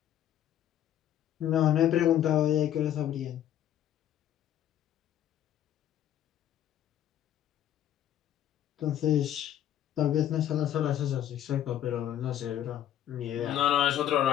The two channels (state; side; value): quieter; right; 11.0 dB